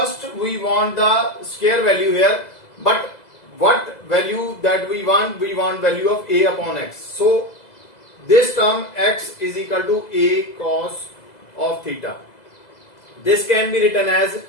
we want the square value here. But what value that we want? We want value of a upon x. So this term x is equal to a cos of theta. This can be written as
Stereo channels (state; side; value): late; right; 2.0 ms